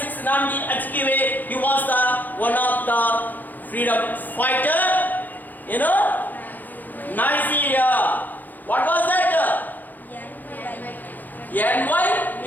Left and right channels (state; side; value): late; right; 0.085 ms